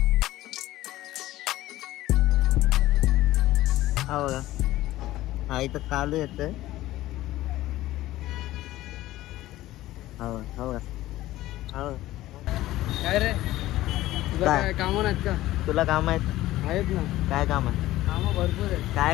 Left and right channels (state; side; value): quieter; right; 15.9 dB